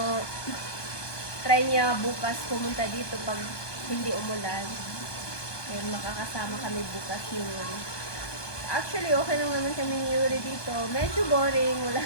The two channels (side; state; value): right; late; 1.2 ms